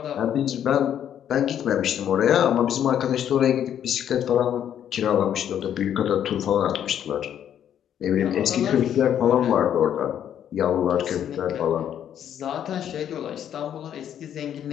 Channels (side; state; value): right; quieter; 9.8 dB